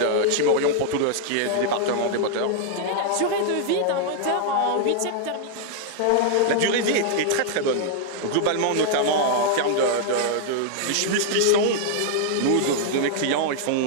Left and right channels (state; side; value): different; both; correlation -0.01